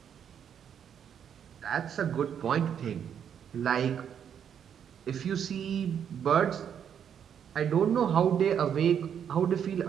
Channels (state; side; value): quieter; left; 8.4 dB